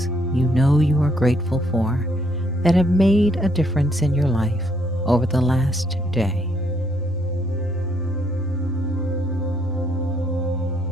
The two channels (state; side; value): normal; both; correlation 0.70